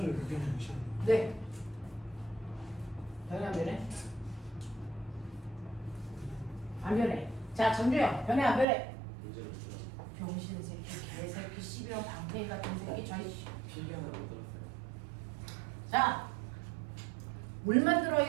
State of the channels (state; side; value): drops out; left; at 8.7 s